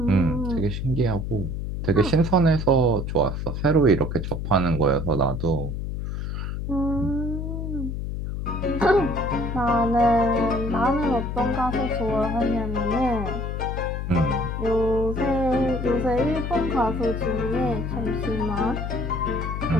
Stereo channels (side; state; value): left; noise; hum, 4 dB below the sound